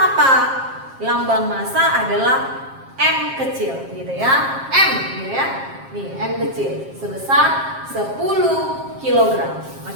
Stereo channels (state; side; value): late; left; 7.5 ms